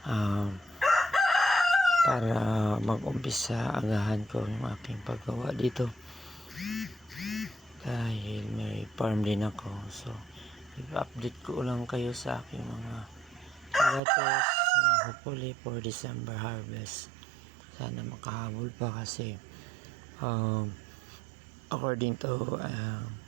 para mag-umpisa agahan ko yung aking paggawa dito dahil may farm din ako. So i-update ko lang kayo sa aking mga lettuce, hopefully for December harvest. Sana makahabol pa kasi according to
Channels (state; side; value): drops out; left; at 14.0 s